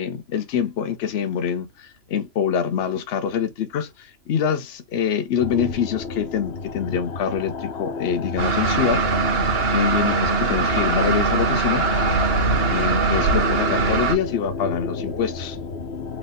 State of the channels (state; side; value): late; right; 2.9 ms